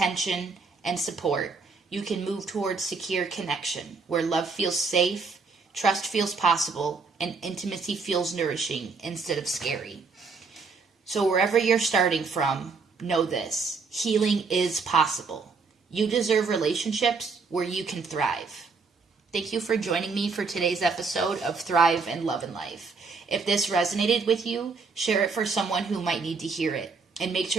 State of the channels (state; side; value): quieter; left; 4.6 dB